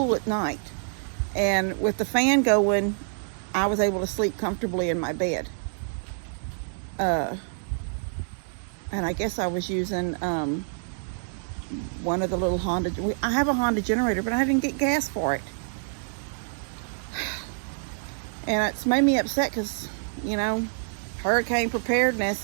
at night. And with the fan going, I was able to sleep comfortably in my bed. And I guess I was using one of the little Honda. I have a Honda generator, but I didn't get gas for it. And it's made me upset because, you know, hurricane preparedness,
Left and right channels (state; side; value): silent; left; digital silence